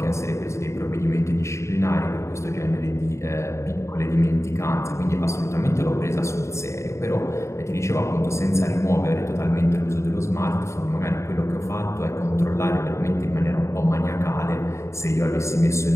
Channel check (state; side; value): late; right; 0.14 ms